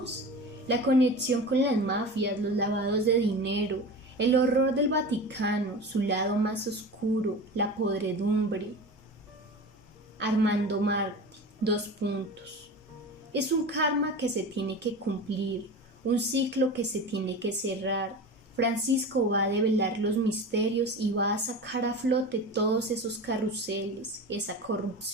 La conexión con las mafias, los lavados de dinero, el horror del Vaticano, su lado más oscuro, la podredumbre. Armando Martí, 2 puntos. Es un karma que se tiene que cumplir, un ciclo que se tiene que cerrar. Francisco va a develar los misterios y va a sacar a flote todos esos carruseles, esa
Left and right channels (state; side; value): normal; both; correlation 0.31